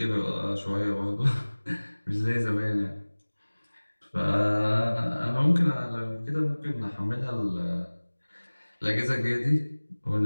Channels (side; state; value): both; inverted; correlation -1.00